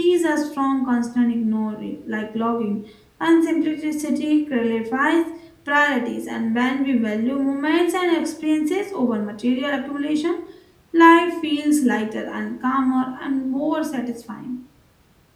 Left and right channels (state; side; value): identical; both; correlation 1.00